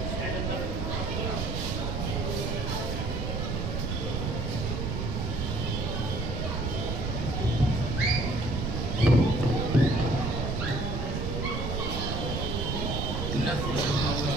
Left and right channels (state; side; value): noise; right; rumble, 1 dB below the sound